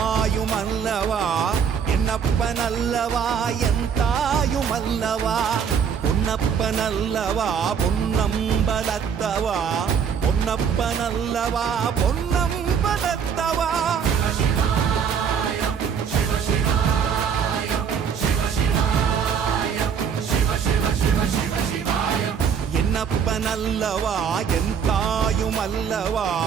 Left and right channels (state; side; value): quieter; left; 7.1 dB